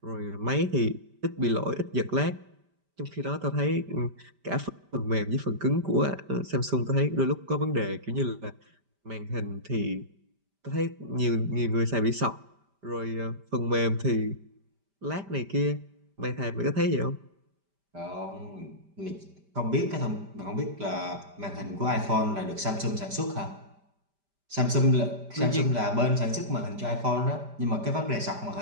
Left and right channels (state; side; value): late; left; 5.1 ms